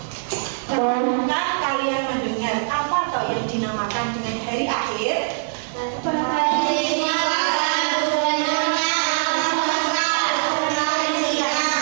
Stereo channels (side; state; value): left; silent; digital silence